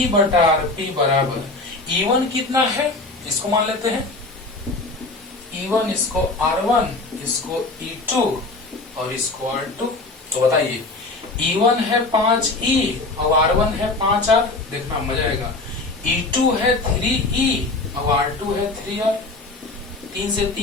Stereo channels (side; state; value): right; quieter; 3.2 dB